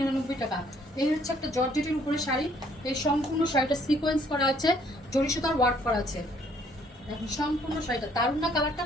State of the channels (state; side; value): normal; both; correlation 0.64